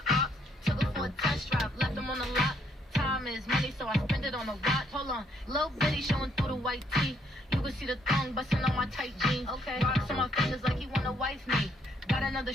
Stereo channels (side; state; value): both; normal; correlation 0.70